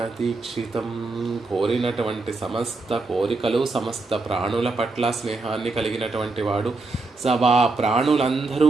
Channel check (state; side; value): quieter; left; 3.6 dB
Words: దీక్షితం. కోరినటువంటి సమస్త కోరికలు, సమస్త ప్రాణుల పట్ల స్నేహాన్ని కలిగినటువంటి వాడు, ప్రాణులందరూ